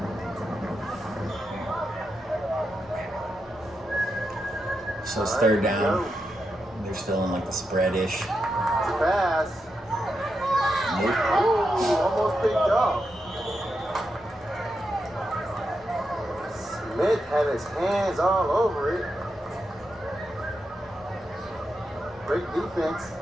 So it's 3rd down. They're still in like the spread-ish. Pass. Nope. Ooh, almost picked off. Smith had his hands all over it. Great defense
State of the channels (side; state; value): both; normal; correlation 0.86